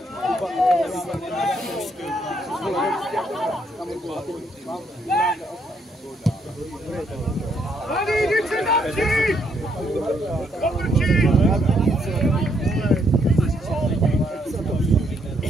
Halí, jdi se zapři! Otočí!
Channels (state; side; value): normal; both; correlation 0.73